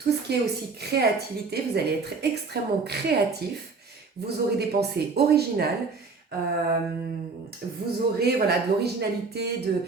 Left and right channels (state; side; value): quieter; left; 4.4 dB